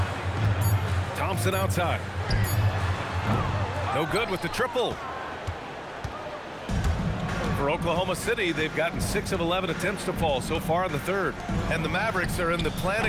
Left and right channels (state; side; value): identical; both; correlation 1.00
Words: Thompson outside. No good with the triple. For Oklahoma City, they've gotten 6 of 11 attempts to fall so far in the third. And the Mavericks are in the